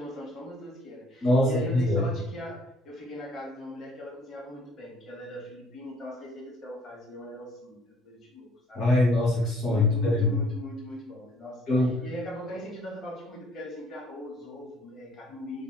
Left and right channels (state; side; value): normal; both; correlation 0.60